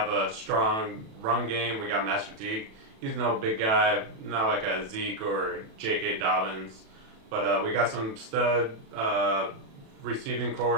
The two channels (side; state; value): left; late; 36 ms